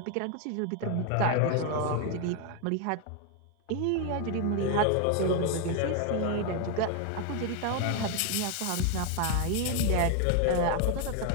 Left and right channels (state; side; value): different; both; correlation 0.01